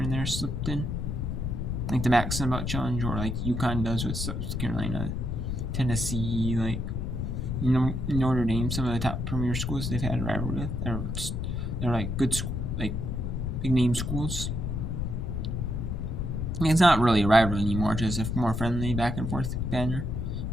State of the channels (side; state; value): left; noise; rumble, 2 dB below the sound